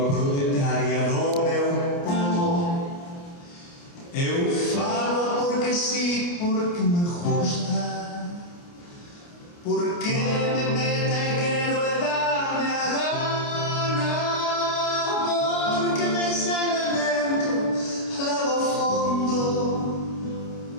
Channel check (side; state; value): right; late; 29 ms